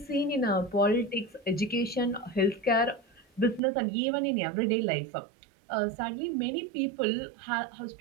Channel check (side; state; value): left; drops out; at 3.6 s